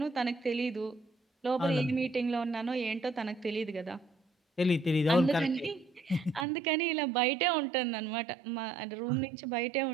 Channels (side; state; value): left; drops out; at 6.5 s